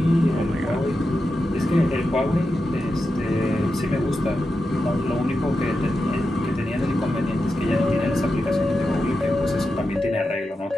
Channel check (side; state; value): both; normal; correlation 0.89